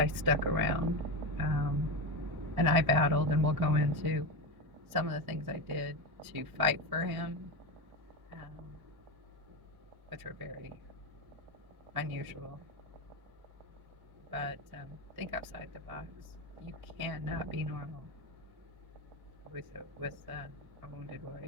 stuck around, and I battled, and we'll go into some of the things I did to fight for him, um, which were very unusual. But think outside the box. You cannot be normal with a wounded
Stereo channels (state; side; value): late; left; 1.1 ms